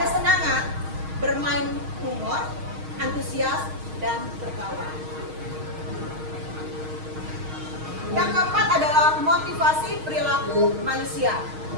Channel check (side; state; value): left; late; 6.4 ms